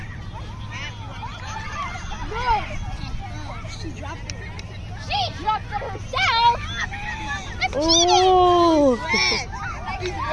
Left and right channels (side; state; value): both; identical; correlation 1.00